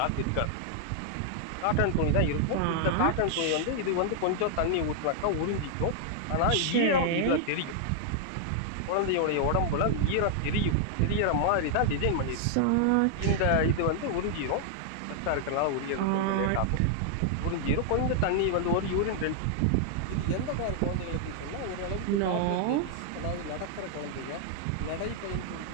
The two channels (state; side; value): different; both; correlation -0.01